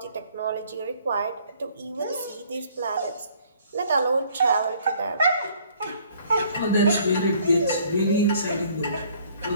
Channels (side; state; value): both; inverted; correlation -0.60